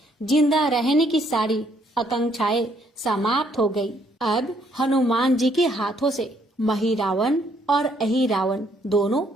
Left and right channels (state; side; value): normal; both; correlation 0.69